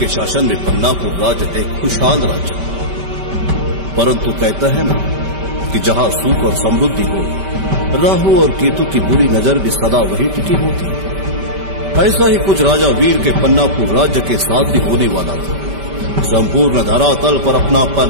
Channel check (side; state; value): left; late; 5.1 ms